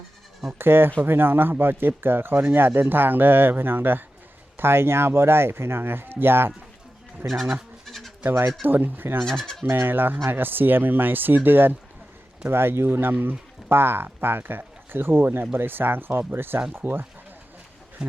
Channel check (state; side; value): normal; both; correlation 0.93